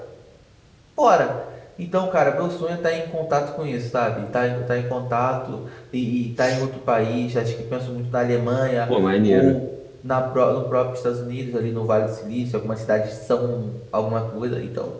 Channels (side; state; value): both; identical; correlation 1.00